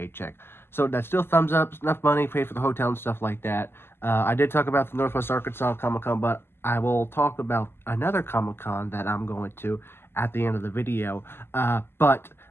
So that's still thumbs up. It's enough money, pay for the hotel and stuff like that. I did talk about the Northwest Arkansas Comic Con, but I will talk about another Comic Con that I'm going to at the end of the video. But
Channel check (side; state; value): right; late; 0.11 ms